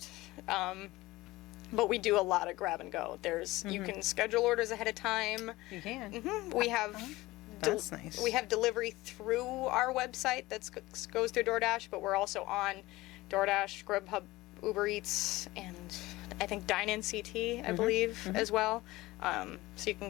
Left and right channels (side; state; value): right; quieter; 19.2 dB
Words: But we do a lot of grab and go. You can schedule orders ahead of time. You can. We have That's nice. We have delivery through our website that goes through DoorDash, but we're also on DoorDash, Grubhub, Uber Eats, and I think Dine-In CT, I believe, as well. So you can